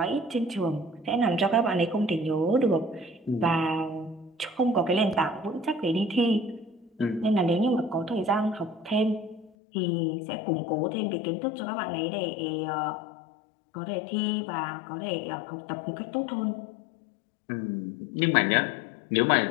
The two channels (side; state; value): right; drops out; at 9.5 s